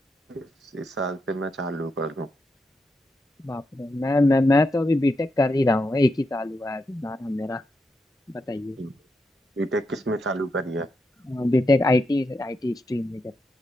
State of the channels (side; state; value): both; normal; correlation 0.84